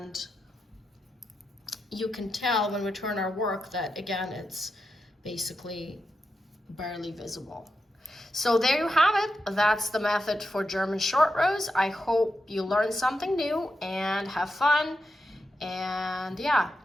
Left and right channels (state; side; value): normal; both; correlation 0.87